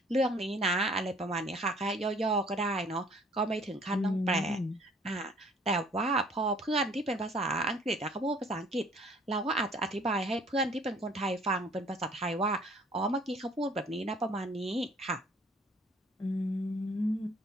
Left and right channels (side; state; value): both; normal; correlation 0.56